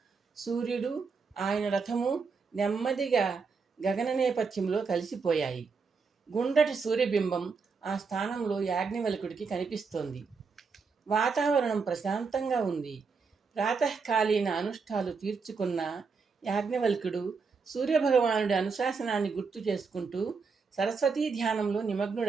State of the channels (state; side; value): quieter; left; 5.0 dB